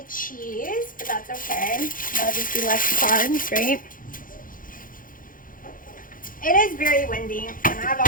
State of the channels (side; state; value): right; late; 0.40 ms